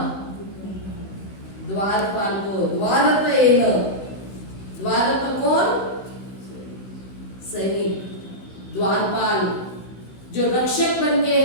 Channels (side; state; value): right; late; 16 ms